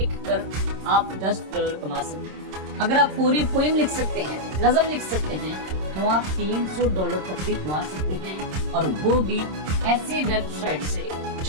आप $10 कमा सकते हैं। अगर आप पूरी पोएम लिख सकते हैं, नज़म लिख सकते हैं, तो आप $300 तक भी कमा सकते हैं, और वो भी ऐसी वेबसाइट से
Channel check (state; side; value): late; left; 26 ms